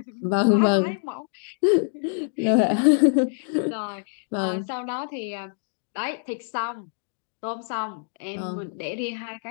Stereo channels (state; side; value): silent; right; digital silence